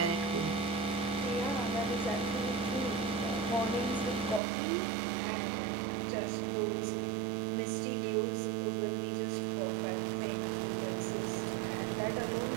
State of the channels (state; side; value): drops out; left; at 4.4 s